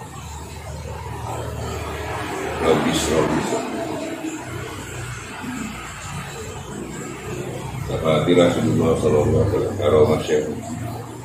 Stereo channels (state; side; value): identical; both; correlation 1.00